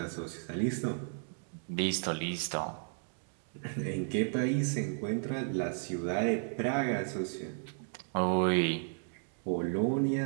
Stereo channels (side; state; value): left; silent; digital silence